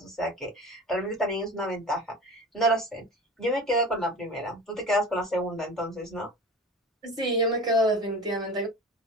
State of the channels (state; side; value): normal; both; correlation 0.34